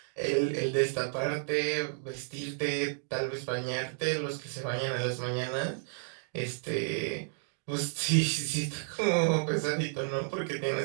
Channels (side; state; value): left; silent; digital silence